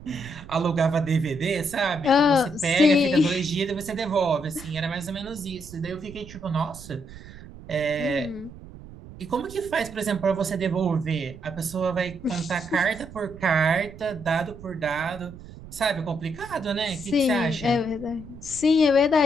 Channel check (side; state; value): right; noise; rumble, 16 dB below the sound